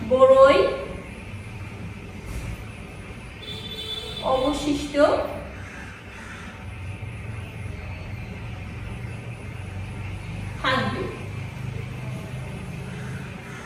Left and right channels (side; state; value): both; identical; correlation 1.00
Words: বড়ই অবশিষ্ট থাকবে।